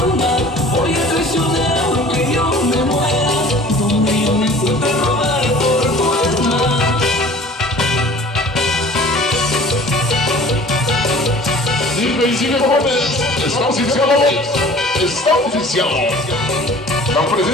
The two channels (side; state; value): both; normal; correlation 0.46